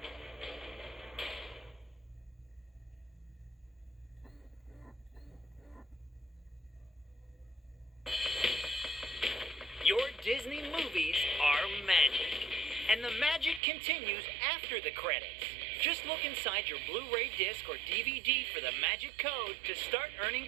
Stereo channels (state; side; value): drops out; left; at 13.6 s